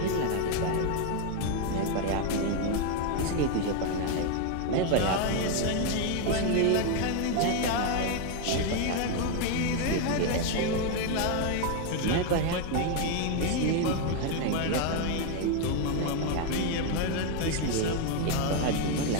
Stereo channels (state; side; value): different; both; correlation 0.01